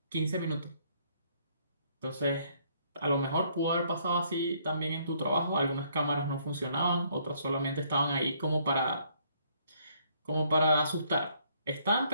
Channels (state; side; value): inverted; both; correlation -0.66